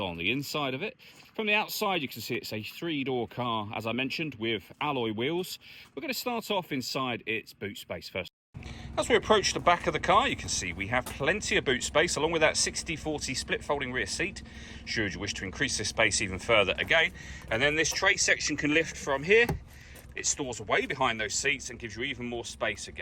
the inside of it. From the outside you can see it's a 3-door car, as I mentioned, with alloy wheels. We're going to start off inside its boot space first. As we approach the back of the car, you can see we have plenty of boot space, along with that 60/40 split folding rear seat, should you wish to increase this space even further again. And then this tray section can lift from here. It stores away behind those seats and gives you even more space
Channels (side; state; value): both; identical; correlation 1.00